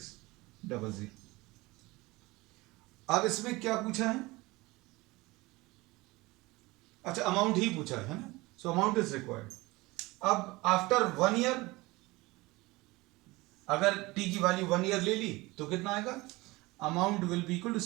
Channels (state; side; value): quieter; left; 21.7 dB